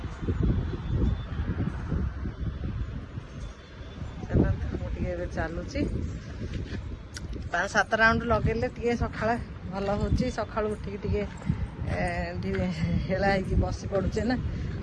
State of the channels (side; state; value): both; identical; correlation 1.00